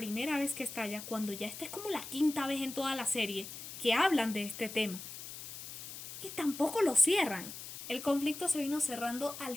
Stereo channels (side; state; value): left; noise; hiss, 10 dB below the sound